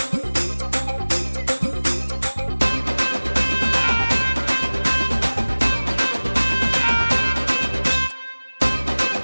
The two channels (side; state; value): both; inverted; correlation -1.00